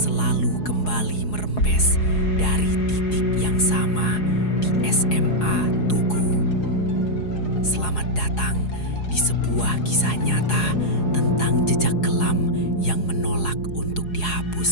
kembali merembes dari titik yang sama di SMA Tugu? Selamat datang di sebuah kisah nyata tentang jejak kelam yang menolak untuk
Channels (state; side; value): late; right; 4.8 ms